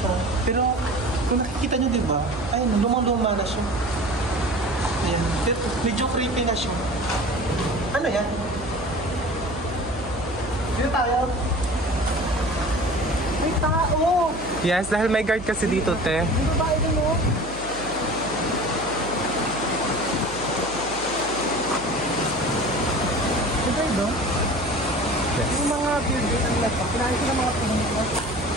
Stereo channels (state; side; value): noise; right; hum, 15 dB below the sound